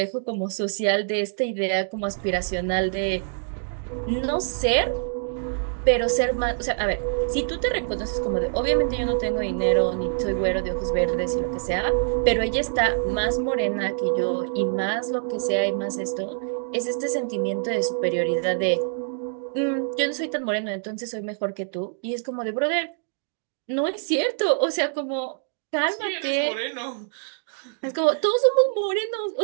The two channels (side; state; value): left; silent; digital silence